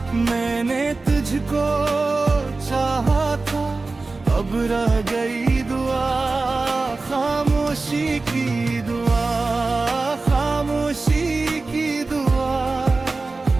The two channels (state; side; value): quieter; left; 3.6 dB